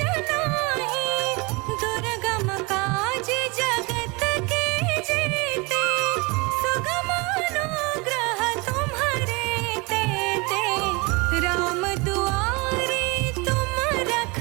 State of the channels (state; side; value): quieter; left; 27.4 dB